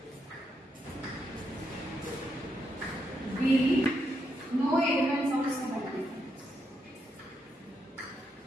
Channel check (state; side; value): normal; both; correlation 0.80